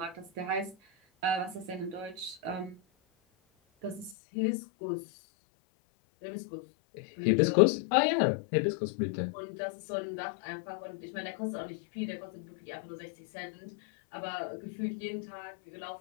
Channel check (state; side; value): drops out; right; at 4.2 s